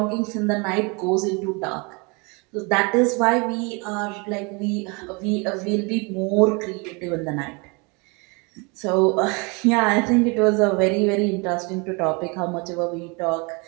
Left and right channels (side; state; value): left; quieter; 30.1 dB